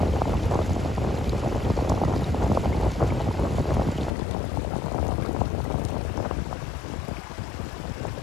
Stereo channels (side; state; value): right; drops out; at 4.1 s